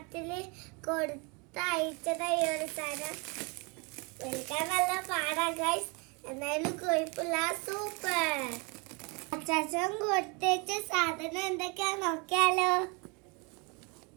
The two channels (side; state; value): left; quieter; 30.6 dB